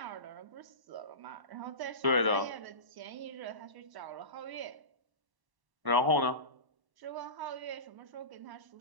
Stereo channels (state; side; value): late; left; 1.0 ms